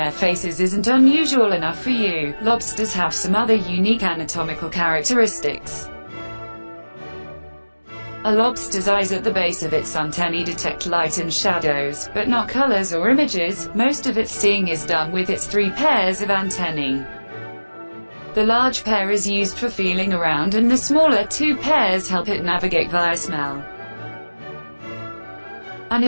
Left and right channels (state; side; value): inverted; both; correlation -1.00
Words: faces isn't unusual enough for you, lobsters have some other unique anatomical characteristics. A lobster's eyes at the base of its antennae detect light and shadows, but not colors or images. Most of its seeing is done with its 3 pairs of antennae. The large pair is used for feeling around and the smaller 2 pairs help it navigate via smell. An